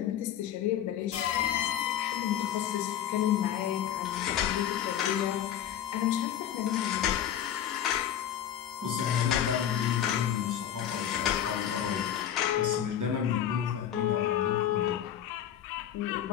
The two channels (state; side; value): quieter; right; 10.3 dB